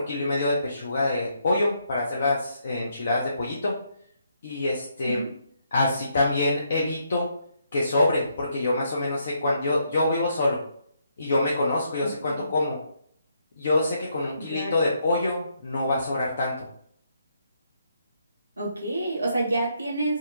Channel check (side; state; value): both; inverted; correlation -0.75